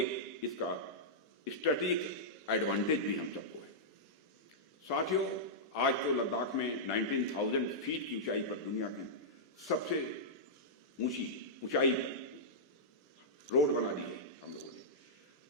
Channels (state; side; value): normal; both; correlation -0.11